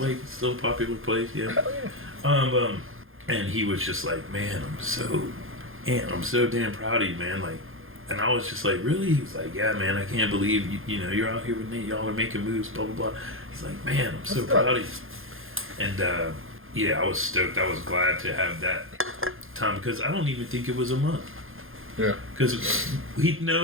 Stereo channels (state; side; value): late; left; 0.60 ms